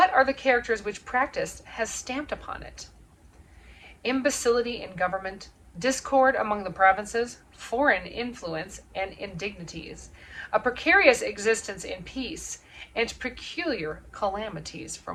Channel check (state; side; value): identical; both; correlation 1.00